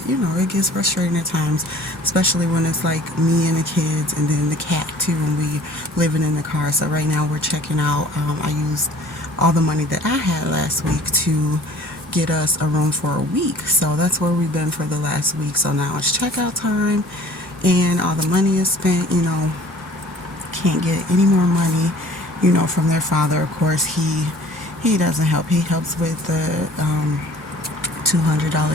it gets frustrating at times, especially when it's like me and the kids and then the cat too, and we living in the car. So right now we're checking out. I used all the money that I had last week to get us a room for a week. So that's where we've been for the last week. So now it's checkout time, and all the money is spent. Can't get any more money, from their father. Of course, he doesn't help. He helps with the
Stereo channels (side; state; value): both; normal; correlation 0.50